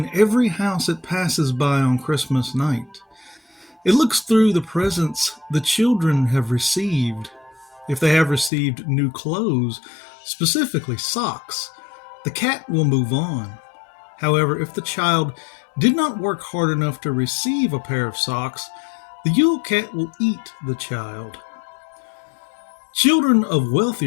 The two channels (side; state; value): right; drops out; at 8.5 s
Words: every house it passes by on Christmas night. It looks through the presents the children have received. If they have received new clothes, specifically socks, the cat will move on. However, if the child did not work hard enough to receive a pair of socks, the Yule Cat will eat the child. Children of